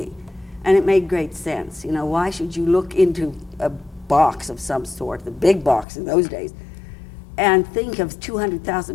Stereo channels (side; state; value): right; drops out; at 5.9 s